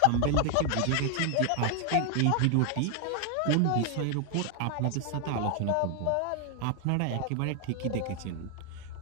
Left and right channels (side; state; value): both; different; correlation 0.00